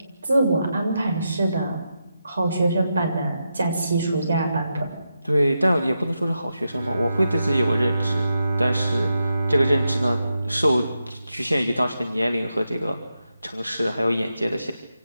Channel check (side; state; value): both; inverted; correlation -0.86